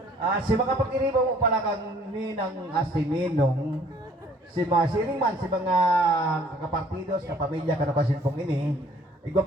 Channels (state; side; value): normal; both; correlation 0.57